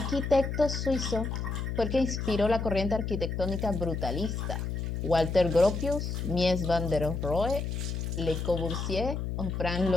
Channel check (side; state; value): left; noise; hum, 3 dB below the sound